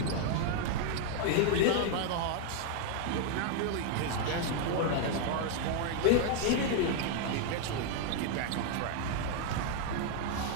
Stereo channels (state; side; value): different; both; correlation 0.00